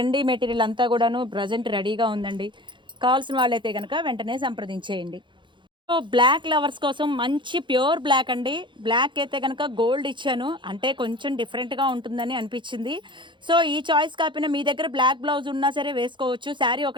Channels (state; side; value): late; left; 0.23 ms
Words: మెటీరియల్ అంతా కూడాను ప్రెజెంట్ రెడీగా ఉందండి. కావాల్సిన వాళ్ళైతే గనక వెంటనే సంప్రదించేయండి. సో, బ్లాక్ లవర్స్ కోసం మంచి ప్యూర్ బ్లాక్ అండి. బ్లాక్ అయితే గనక గోల్డ్ ఇచ్చాను. అంటే కొంచెం డిఫరెంట్‌గా ఉంటుందని అనిపిచ్చింది. సో, ఈ చాయిస్ కాకపోయినా మీ దగ్గర బ్లాక్ బ్లౌజ్ ఉన్నా సరే వేసుకోవచ్చు. శారీ